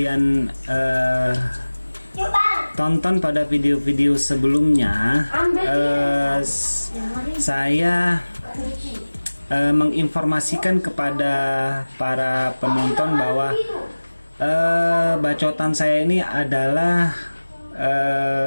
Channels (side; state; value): both; inverted; correlation -1.00